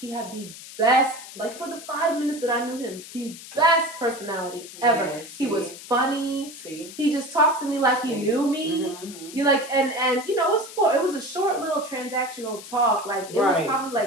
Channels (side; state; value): left; noise; hiss, 15 dB below the sound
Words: had the best, like, for the 5 minutes that I knew him, the best personality ever. Yeah, he was funny. See? He just talked to me like he knew me. You like, and you know, it was a short little transactional talk. Like, it was probably